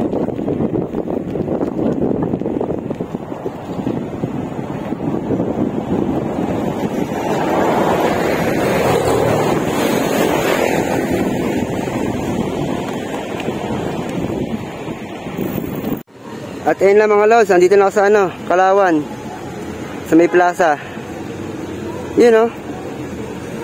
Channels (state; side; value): identical; both; correlation 1.00